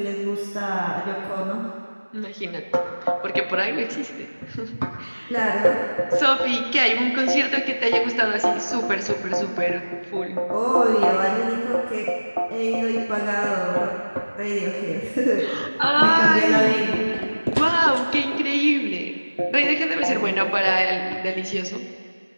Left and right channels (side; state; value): both; inverted; correlation -1.00